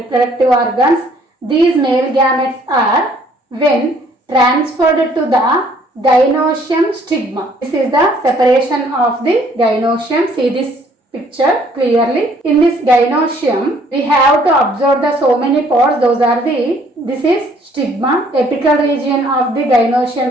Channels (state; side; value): normal; both; correlation 0.61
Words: organs. These male gametes are when transferred to the gynoecium stigma. This is the separation of the gynoecium. See this picture clearly. In this gynoecium, we have to observe the so many parts. Those are this is stigma. Apical region of the